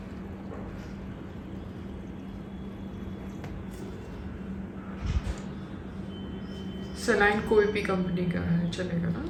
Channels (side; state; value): both; identical; correlation 1.00